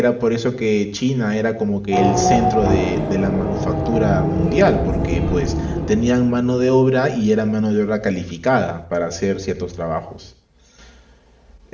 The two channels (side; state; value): both; identical; correlation 1.00